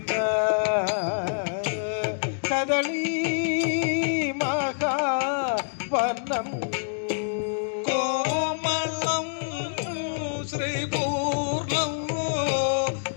കദളി മഹാവനം കോമളം ശ്രീപൂർണം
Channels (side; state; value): right; silent; digital silence